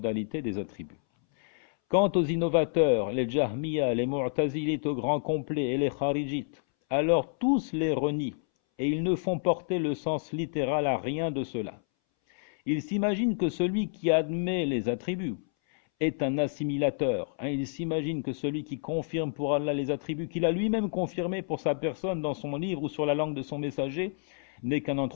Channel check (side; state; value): right; silent; 59 dB below the other